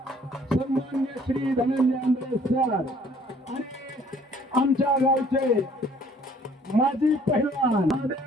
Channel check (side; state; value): both; normal; correlation 0.58